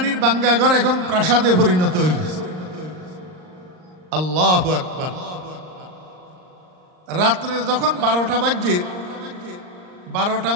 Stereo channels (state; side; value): late; left; 39 ms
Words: বাঙ্গাঘর এখন প্রাসাদে পরিণত হয়েছে। আল্লাহু আকবার। রাত্রে যখন 12টা বাজছে, 12টা